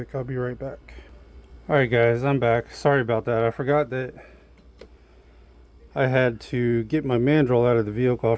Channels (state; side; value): identical; both; correlation 1.00